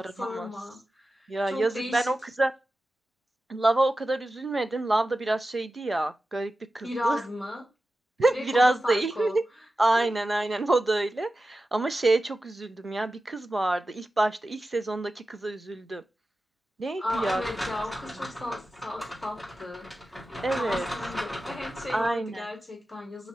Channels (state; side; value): normal; both; correlation 0.93